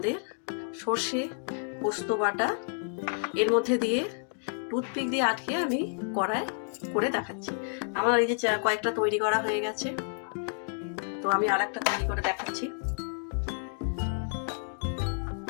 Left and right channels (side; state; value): right; silent; 58 dB below the other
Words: সর্ষে পোস্ত বাটা এর মধ্যে দিয়ে টুথপিক দিয়ে আটকে আমি কড়ায় করে দেখাচ্ছি। আমার এই যে কয়েকটা তৈরি করা হয়ে গেছে, তো আমি আর একটা তৈরি করে দেখাচ্ছি।